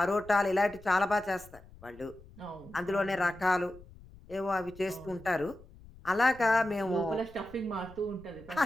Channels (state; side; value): noise; left; rumble, 21 dB below the sound